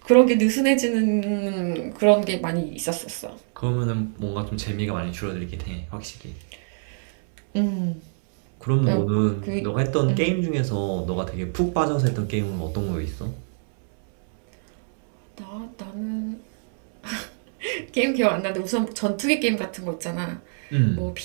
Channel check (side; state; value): left; silent; digital silence